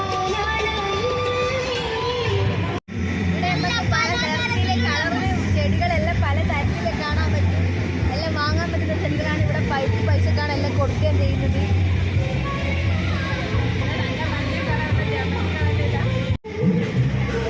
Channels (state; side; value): identical; both; correlation 1.00